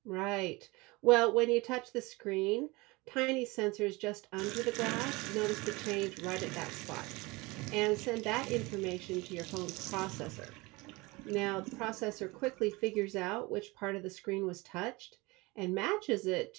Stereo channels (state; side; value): quieter; left; 23.7 dB